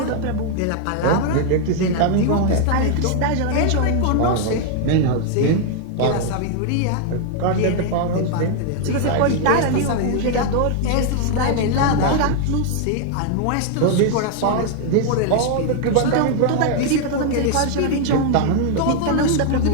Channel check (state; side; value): different; both; correlation 0.00